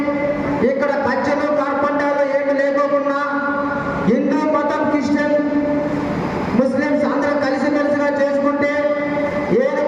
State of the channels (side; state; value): both; identical; correlation 1.00